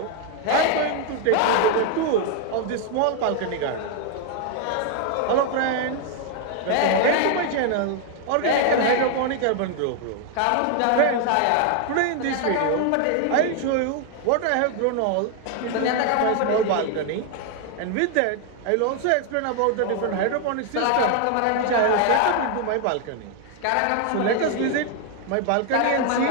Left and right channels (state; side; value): different; both; correlation 0.00